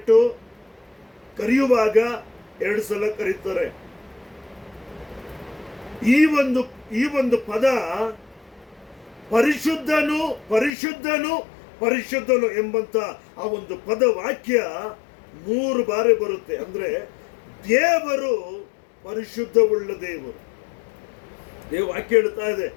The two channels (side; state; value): right; drops out; at 10.7 s